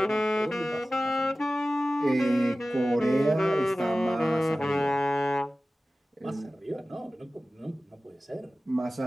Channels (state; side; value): normal; both; correlation 0.96